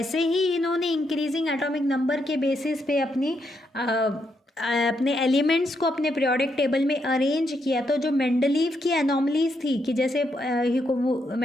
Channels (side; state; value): both; normal; correlation 0.79